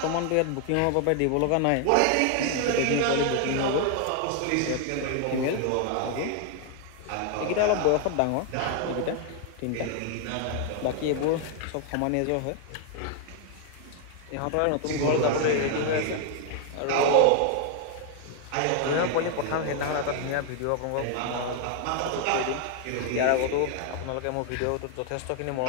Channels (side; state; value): both; different; correlation 0.00